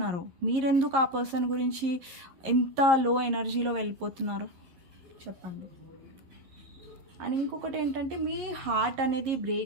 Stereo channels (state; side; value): late; left; 11 ms